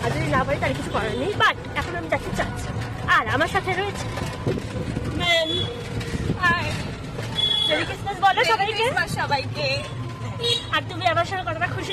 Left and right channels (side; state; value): both; identical; correlation 1.00